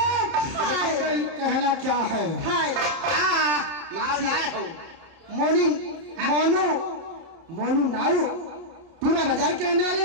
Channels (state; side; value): late; left; 30 ms